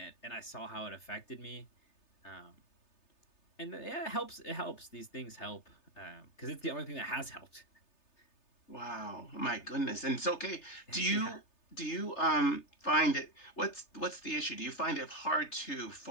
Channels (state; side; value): late; right; 3.3 ms